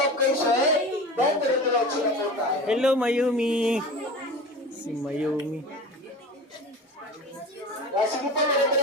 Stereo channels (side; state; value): both; normal; correlation 0.33